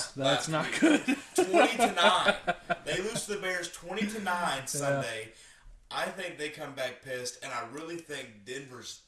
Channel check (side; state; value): both; identical; correlation 1.00